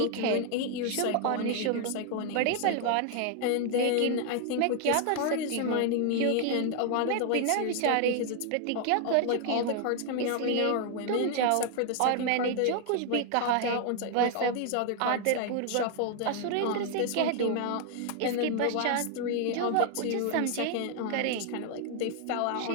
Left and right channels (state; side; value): different; both; correlation 0.00